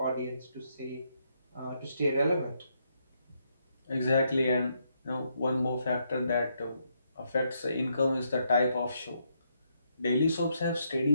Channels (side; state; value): both; inverted; correlation -0.77